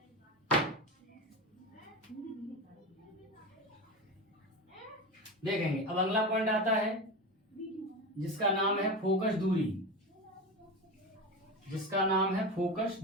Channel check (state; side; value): normal; both; correlation 0.23